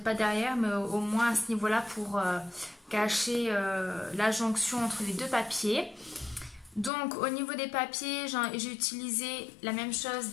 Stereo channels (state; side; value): drops out; right; at 6.9 s